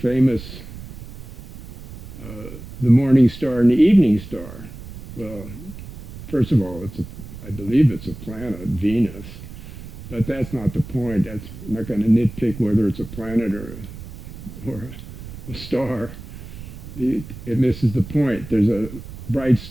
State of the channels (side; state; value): right; noise; rumble, 13 dB below the sound